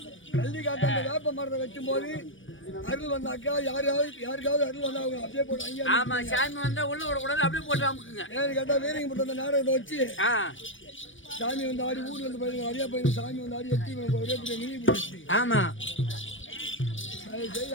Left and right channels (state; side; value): late; right; 0.56 ms